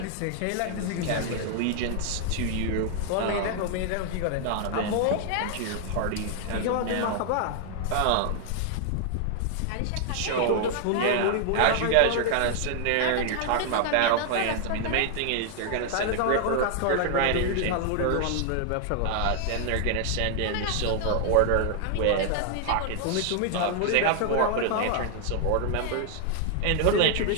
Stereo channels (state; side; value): different; both; correlation 0.00